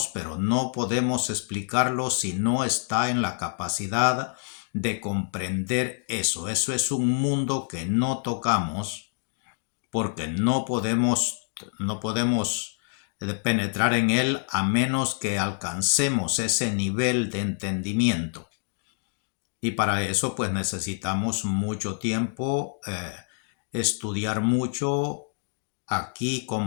pero no podemos explicarlo si no está en la capacidad de comprender eso. Eso es un mundo que no tocamos porque no podemos penetrar en él a menos que alcancemos ese nivel de entendimiento. Y para eso pues necesitamos mucho tiempo, estudiar mucho. Aquí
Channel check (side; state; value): right; silent; 60 dB below the other